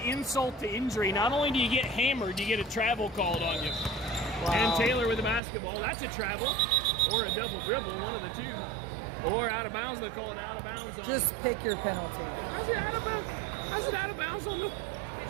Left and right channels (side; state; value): left; drops out; at 5.4 s